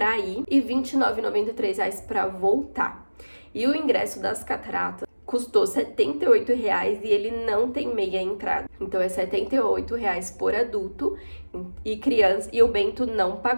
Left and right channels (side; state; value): both; inverted; correlation -1.00